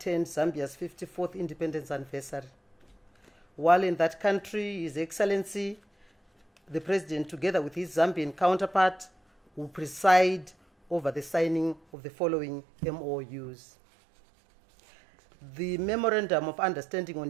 Zambia's 54th independence anniversary. While in that country, His Excellency the President, together with his Zambian counterpart, will preside over the signing of the following MOUs. The Memorandum of Understanding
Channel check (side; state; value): left; drops out; at 11.8 s